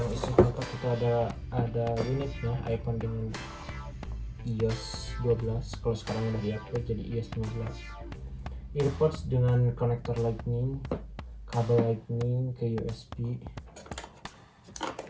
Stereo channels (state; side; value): identical; both; correlation 1.00